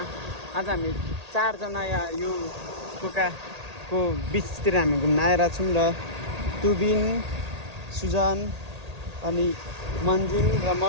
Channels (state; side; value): late; left; 1.8 ms